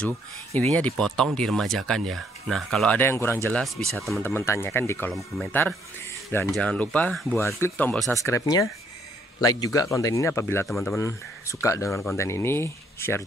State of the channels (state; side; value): normal; both; correlation 0.68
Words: Intinya dipotong, diremajakan ya. Nah, kalau ada yang kurang jelas bisa teman-teman tanyakan di kolom komentar. Dan jangan lupa buat klik tombol subscribe-nya. Like juga konten ini apabila teman-teman suka dengan konten ini, share